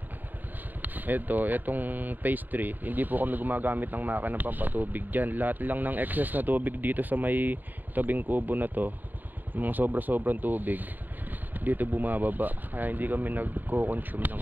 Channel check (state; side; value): late; left; 0.088 ms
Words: etong phase 3, hindi po kami gumagamit ng makina pampatubig dyan. Lahat lang ng excess na tubig dito sa may tabing kubo na to, mga sobrang tubig dito bumababa, kaya hindi kami nagko-consume ng